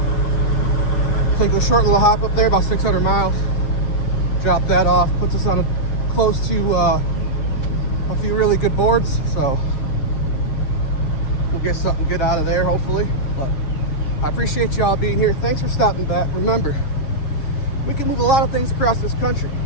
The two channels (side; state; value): right; late; 7.3 ms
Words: take a short little hop up there, about 600 miles. Drop that off, puts us on close to a few really good boards, so we'll get something good out of there, hopefully. But I appreciate y'all being here. Thanks for stopping back. Remember, we can move a lot of things across this country.